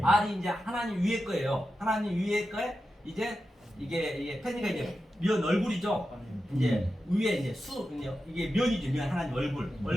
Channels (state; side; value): normal; both; correlation 0.91